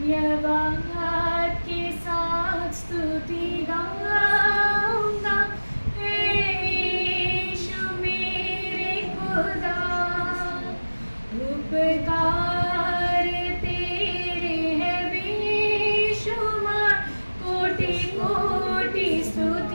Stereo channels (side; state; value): both; inverted; correlation -1.00